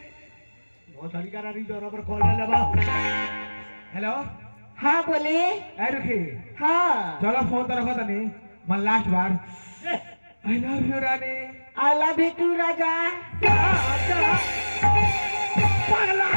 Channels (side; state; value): both; inverted; correlation -1.00